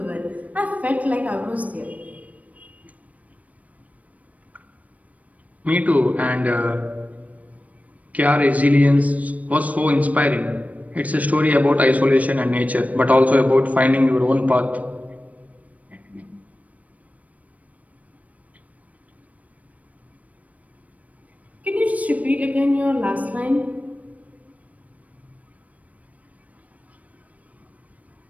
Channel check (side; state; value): left; late; 0.070 ms